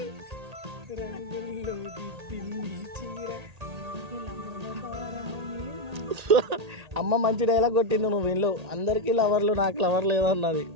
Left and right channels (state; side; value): late; left; 1.8 ms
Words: రంగుల్లో దిద్దింది చీర. అమ్మ మంచి డైలాగ్ కొట్టింది. నువ్వు వీళ్ళు అందరికీ లవర్లు, నాకు లవర్ లేదన్నది.